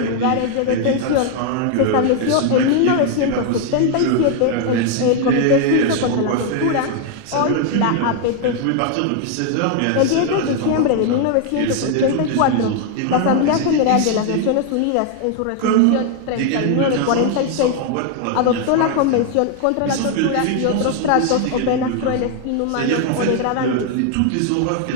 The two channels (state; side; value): different; both; correlation 0.00